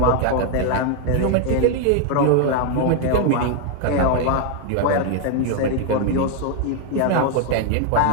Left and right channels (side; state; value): both; different; correlation 0.01